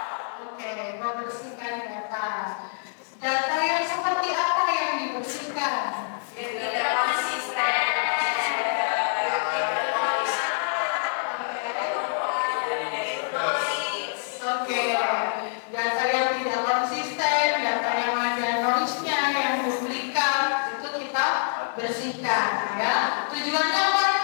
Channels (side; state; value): right; silent; digital silence